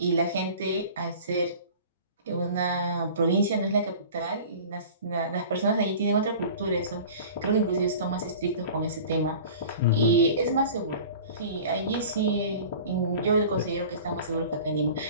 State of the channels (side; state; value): both; inverted; correlation -0.41